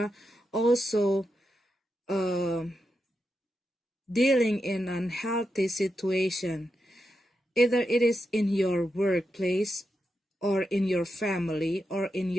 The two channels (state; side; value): normal; both; correlation 0.87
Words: also dealing in unhealthy situation. Either it is in your workplace, or in your family, or in